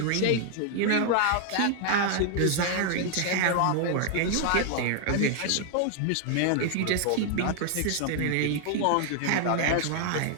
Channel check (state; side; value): different; both; correlation 0.00